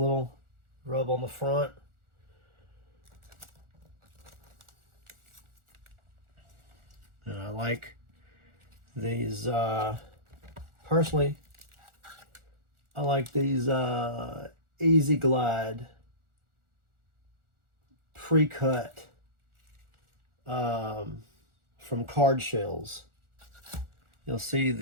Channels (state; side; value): late; left; 1.4 ms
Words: rub on the front. And I like these, personally, I like these Easy Glide pre-cut from card shells. You'll